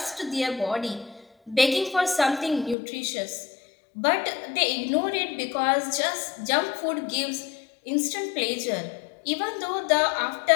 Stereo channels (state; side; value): drops out; right; at 2.8 s